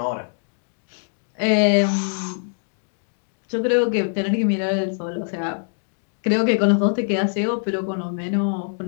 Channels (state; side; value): silent; right; 63 dB below the other